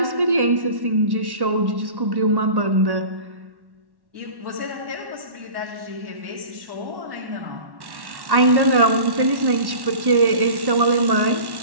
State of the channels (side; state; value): left; late; 1.1 ms